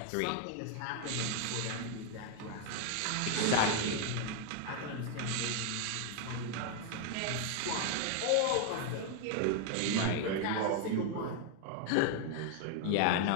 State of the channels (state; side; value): different; both; correlation 0.00